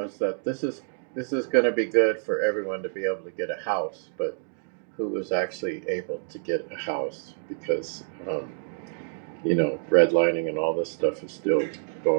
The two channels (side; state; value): left; silent; digital silence